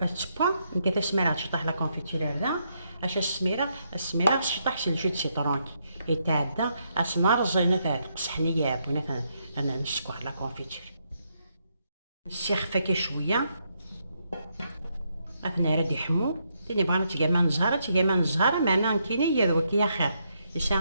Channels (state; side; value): inverted; both; correlation -0.78